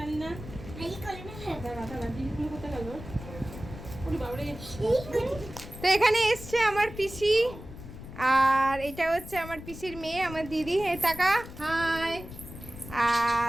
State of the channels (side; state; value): left; noise; rumble, 13 dB below the sound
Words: না। এই করে না দাঁড়া দাঁড়া, দিদি কোথায় গেল? ওরে বাবা রে। তো এখানে এসছে আমার পিসি, আর এটা হচ্ছে আমার পিসির মেয়ে, আমার দিদি। এই টাকা হাই।